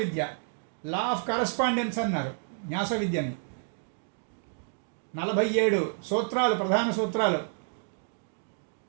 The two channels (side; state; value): left; silent; digital silence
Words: లా ఆఫ్ కరస్పాండెన్స్ అన్నారు న్యాస విద్యని. 47 సూత్రాలు, ప్రధాన సూత్రాలు.